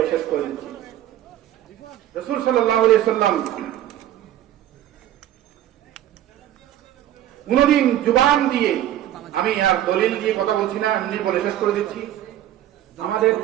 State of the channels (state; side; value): quieter; left; 12.4 dB